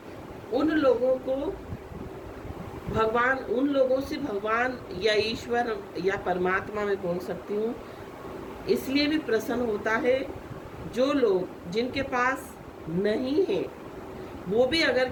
उन लोगों को भगवान, उन लोगों से भगवान या ईश्वर या परमात्मा में बोल सकती हूँ, इसलिए भी प्रसन्न होता है जो लोग जिनके पास नहीं है, वो भी अगर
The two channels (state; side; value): identical; both; correlation 1.00